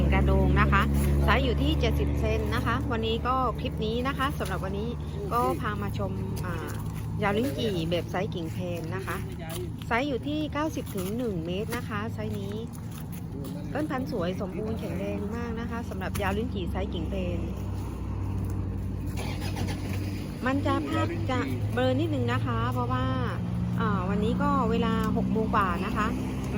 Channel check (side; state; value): both; identical; correlation 1.00